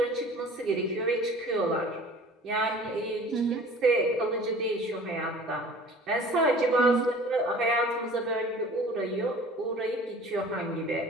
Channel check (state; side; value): normal; both; correlation 0.46